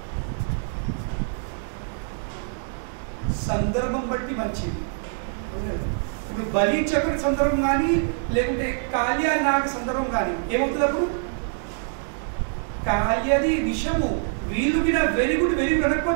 సందర్భం బట్టి మంచిది. ఇప్పుడు బలి చక్ర సందర్భం కానీ లేకుంటే కాళియ నాగ సందర్భం కానీ ఏమవుతుంది? అప్పుడు కాళియది విషము వీళ్ళు కూడా వెరీ గుడ్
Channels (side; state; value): left; silent; digital silence